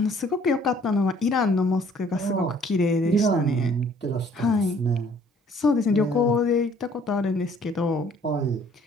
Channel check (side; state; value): both; normal; correlation 0.58